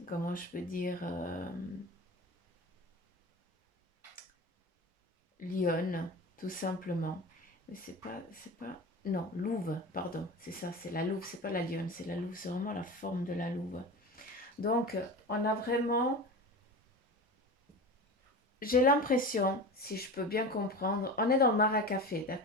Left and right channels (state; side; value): normal; both; correlation 0.30